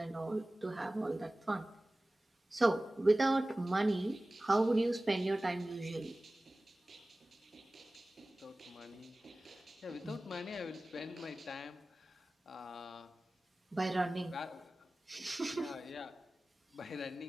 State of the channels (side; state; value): both; normal; correlation 0.97